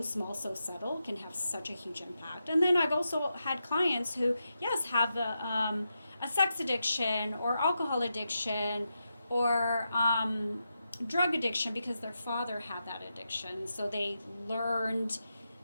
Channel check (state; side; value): inverted; both; correlation -0.87